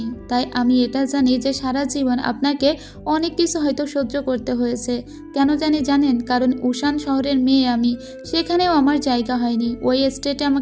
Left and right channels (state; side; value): identical; both; correlation 1.00